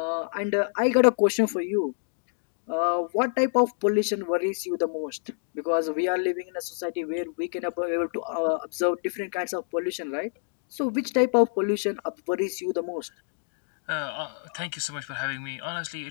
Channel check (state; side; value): silent; right; digital silence